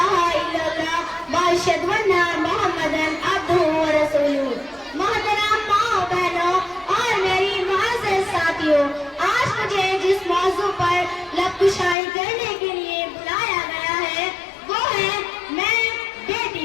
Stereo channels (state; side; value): drops out; right; at 12.0 s